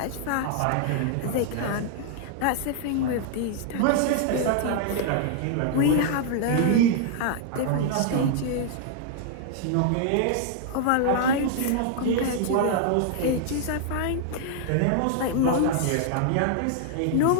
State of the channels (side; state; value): both; different; correlation 0.00